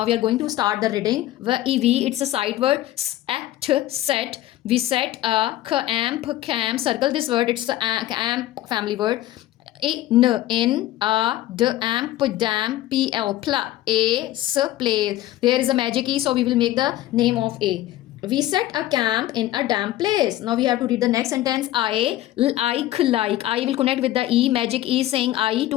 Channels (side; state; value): right; quieter; 14.8 dB